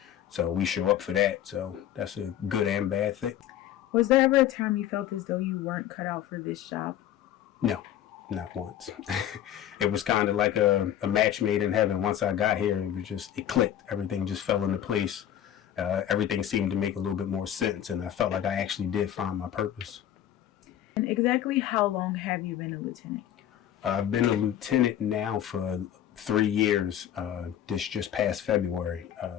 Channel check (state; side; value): quieter; right; 10.9 dB